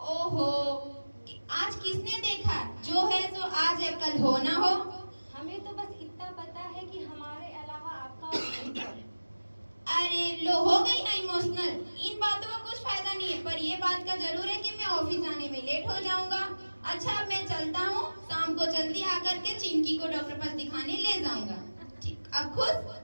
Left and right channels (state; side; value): inverted; both; correlation -1.00